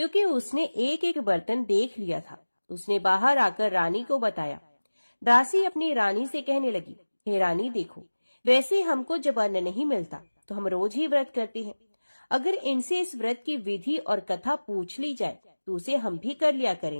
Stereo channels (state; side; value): inverted; both; correlation -1.00